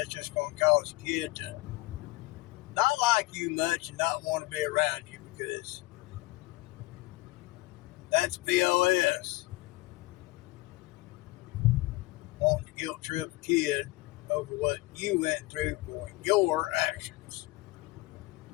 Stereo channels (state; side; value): quieter; right; 21.2 dB